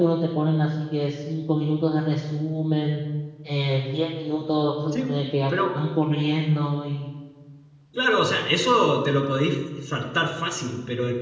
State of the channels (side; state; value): both; identical; correlation 1.00